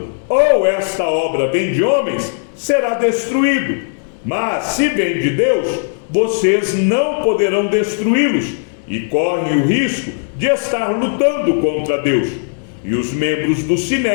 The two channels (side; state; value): right; silent; 68 dB below the other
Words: ou esta obra vem de homens, será destruído, mas se vem de Deus, vocês não poderão destruí-los e correm o risco de estar lutando contra Deus. E os membros do